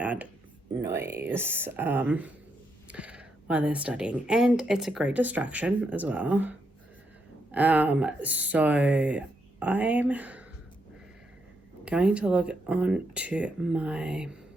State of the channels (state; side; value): normal; both; correlation 0.80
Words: noise while they're studying, and it's a great distraction as well. So I'm going to log on to my